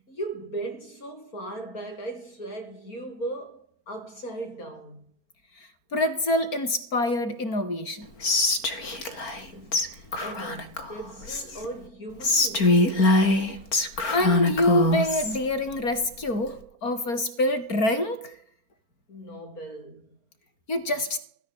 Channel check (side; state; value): right; late; 4.4 ms